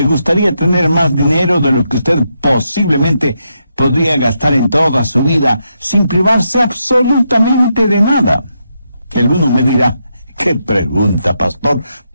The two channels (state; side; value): inverted; both; correlation -0.82